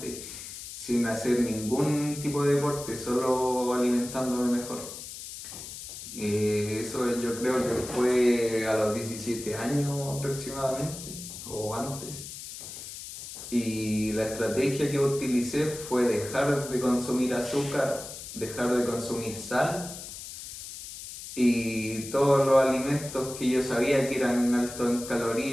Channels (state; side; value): noise; left; hiss, 11 dB below the sound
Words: sin hacer ningún tipo de deporte, solo alimentándome mejor. Eso yo creo que fue a los 17 años aproximadamente, o antes. Y la estrategia que utilicé fue dejar de consumir azúcar, dejar de consumir sal y todos los alimentos que yo sabía que eran altos en